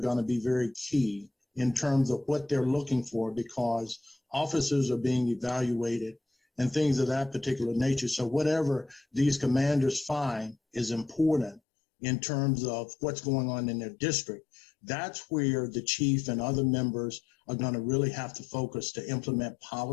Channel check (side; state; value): right; drops out; at 11.6 s